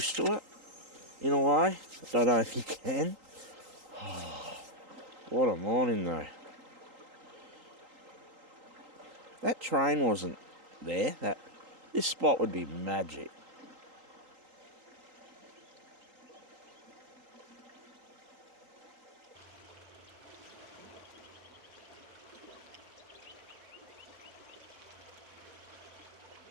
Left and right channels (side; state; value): left; late; 3.8 ms